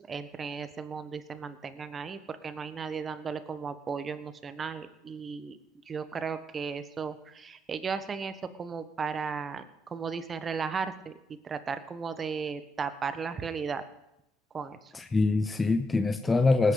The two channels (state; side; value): normal; both; correlation 0.82